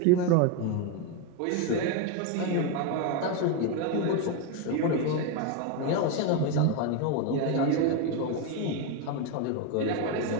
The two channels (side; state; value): both; different; correlation 0.02